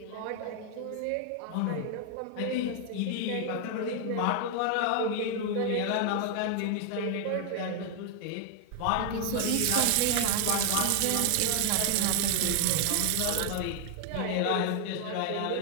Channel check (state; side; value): different; both; correlation 0.00